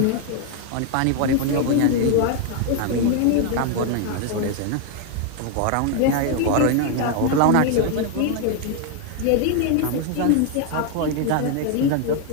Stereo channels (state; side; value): different; both; correlation 0.00